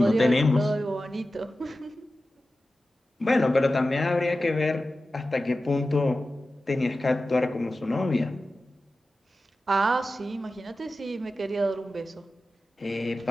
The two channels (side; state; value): both; normal; correlation 0.94